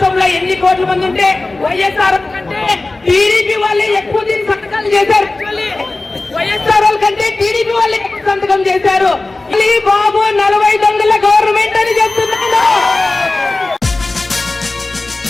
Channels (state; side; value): quieter; right; 3.1 dB